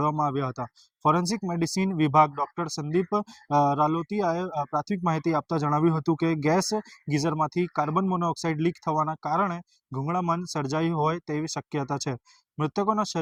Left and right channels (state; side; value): identical; both; correlation 1.00